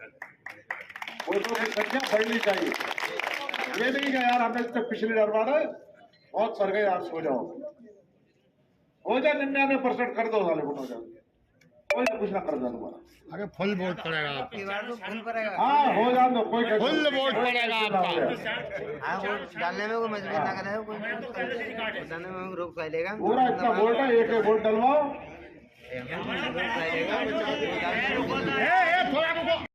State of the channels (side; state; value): both; identical; correlation 1.00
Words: वोटों की संख्या बढ़नी चाहिए। ये नहीं कि यार हमने तक पिछली डरवा रहे बहुत सर गए, आप सो जाओ, हो जाए 99% कर दो साले वोट, हो जाए कोई ना कुछ ना कर दो हमारा। अरे फुल वोट पड़ेगा आपका। हाँ हो जाए दो, कोई फुल वोट पड़ेगा आपका। हाँ, वोट डालने में कोई मजबूरी ना करे, कोई डालने में रोक लेगा। पूरा इतना वोट है, एक वोट डलवाओ। रोक